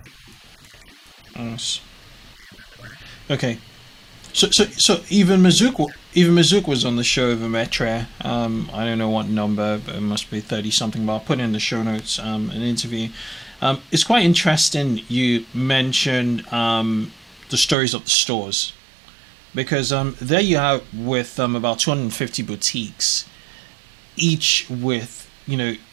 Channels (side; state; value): left; drops out; at 17.8 s